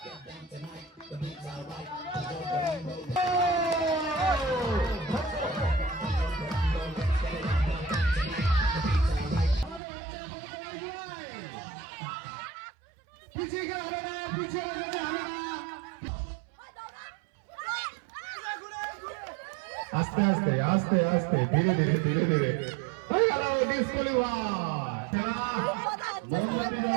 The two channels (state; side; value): drops out; left; at 9.8 s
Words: পিছিয়ে গেলে হবে না, পিছিয়ে গেলে হবে না। আস্তে আস্তে আস্তে আস্তে ধীরে ধীরে ধীরে ধীরে হয়ে গেল